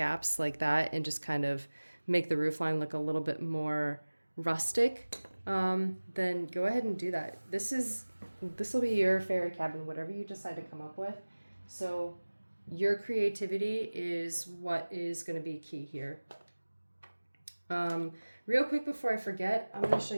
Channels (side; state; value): both; inverted; correlation -1.00